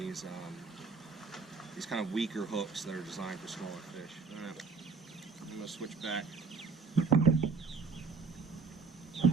kind of weaker hooks that are designed for smaller fish. I'm going to switch back.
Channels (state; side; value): quieter; left; 4.5 dB